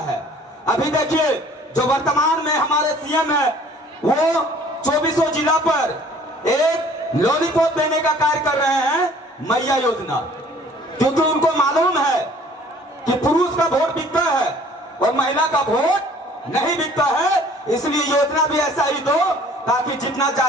है। अभी देखिए, जो वर्तमान में हमारे सीएम है वो 24 जिला पर एक लॉलीपॉप देने का कार्य कर रहे हैं, मैया योजना। क्योंकि उनको मालूम है कि पुरुष का वोट बिकता है और महिला का वोट नहीं बिकता है, इसलिए योजना भी ऐसा ही दो ताकि जितना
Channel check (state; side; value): normal; both; correlation 0.53